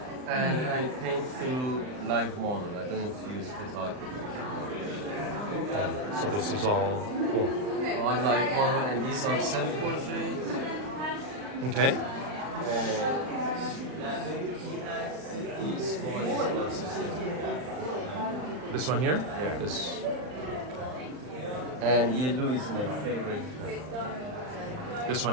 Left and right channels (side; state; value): left; late; 39 ms